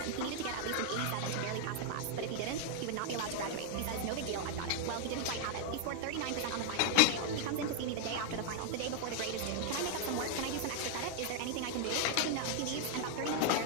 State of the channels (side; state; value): both; different; correlation 0.00